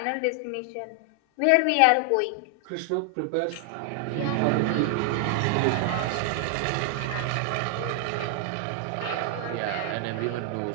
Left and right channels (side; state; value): both; different; correlation 0.00